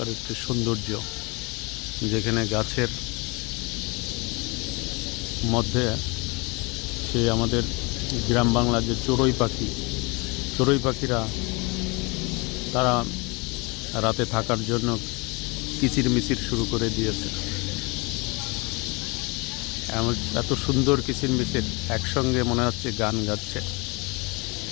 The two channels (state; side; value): quieter; right; 27.9 dB